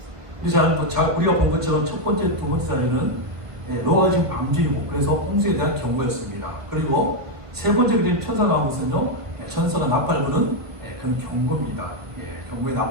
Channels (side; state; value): left; late; 1.4 ms